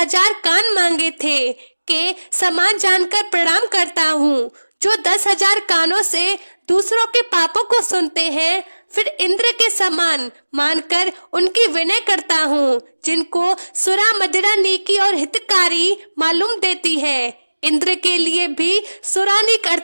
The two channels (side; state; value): both; inverted; correlation -1.00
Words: कान मांगे थे, के समान जानकर प्रणाम करता हूँ, जो 10,000 कानों से दूसरों के पापों को सुनते हैं, फिर इंद्र के समान मानकर उनकी विनय करता हूँ, जिनको सुरा मदिरा नेकी और हितकारी मालूम देती है। इंद्र के लिए भी सुरानिक